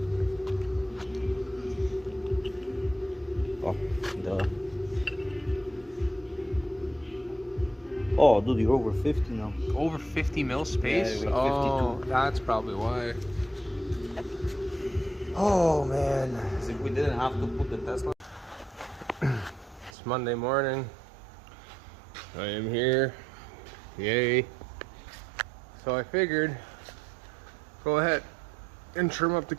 Oh, duh. Oh, dude, you're over 50 now. Over 50 mil space? Yeah, oh, 52. that's probably why. Oh, man. As if we didn't have to put the Tesla. It's Monday morning. I am here. Yay. So I figured, go ahead and trim up the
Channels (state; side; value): drops out; left; at 19.9 s